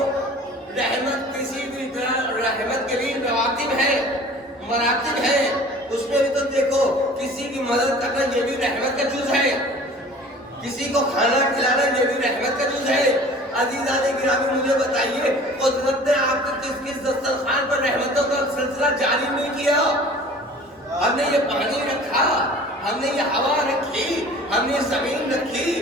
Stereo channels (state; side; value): normal; both; correlation 0.45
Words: رحمت کسی بھی رحمت کے لیے رواتب ہے, مراتب ہے. اس میں بھی تو دیکھو کسی کی مدد کرنا یہ بھی رحمت کا جز ہے, کسی کو کھانا کھلانا یہ بھی رحمت کا جز ہے. عزیزان گرامی مجھے بتائیے قدرت نے آپ کو کس دسترخوان پر رحمتوں کا سلسلہ جاری نہیں کیا؟ ہم نے یہ پانی رکھا, ہم نے یہ ہوا رکھی, ہم نے زمین رکھی,